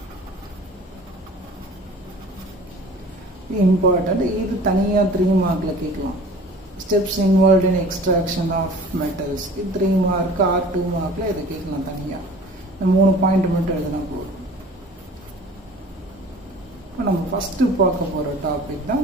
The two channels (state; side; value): normal; both; correlation 0.45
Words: Important. இது தனியா 3 மார்க்ல கேட்கலாம். Steps involved in extraction of metals. இது 3 mark R 2 மார்க்ல இதை கேட்கலாம் தனியா. 3 point மட்டும் எழுதினா போதும். இப்போ நம்ம ஃபஸ்ட்டு பார்க்க போகிற டாபிக் தான்